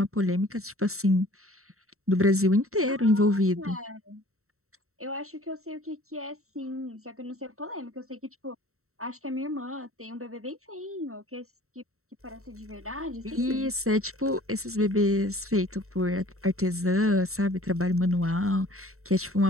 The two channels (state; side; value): late; left; 0.63 ms